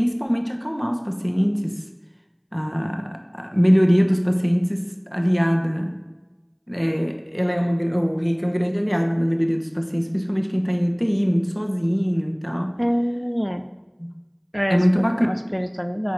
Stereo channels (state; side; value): identical; both; correlation 1.00